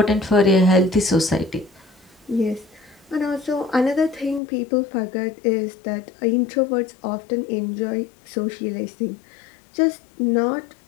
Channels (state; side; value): drops out; right; at 4.4 s